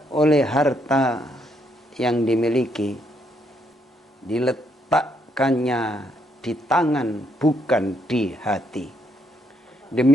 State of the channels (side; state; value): both; normal; correlation 0.74